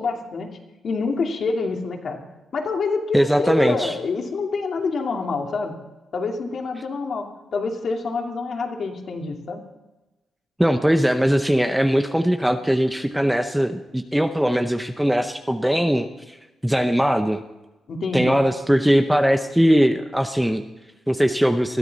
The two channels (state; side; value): normal; both; correlation 0.96